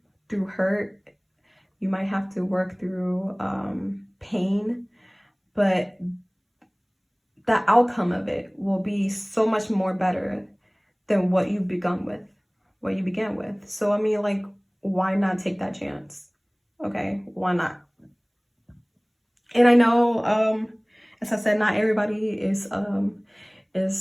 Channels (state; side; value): identical; both; correlation 1.00